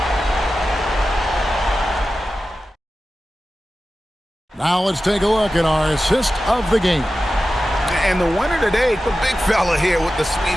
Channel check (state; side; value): normal; both; correlation 0.94